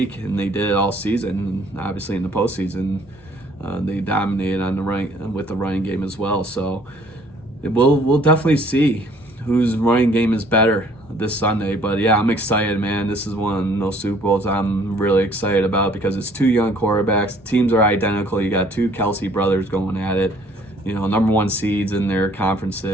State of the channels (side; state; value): both; normal; correlation 0.58